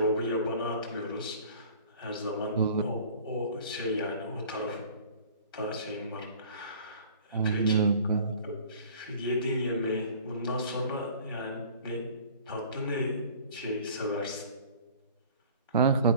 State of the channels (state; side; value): inverted; both; correlation -0.48